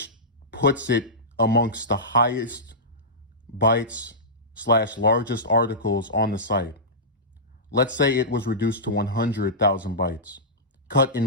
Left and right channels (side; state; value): both; normal; correlation -0.16